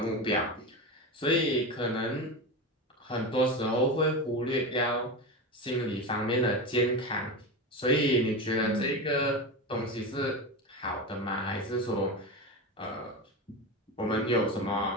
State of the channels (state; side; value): normal; both; correlation 0.21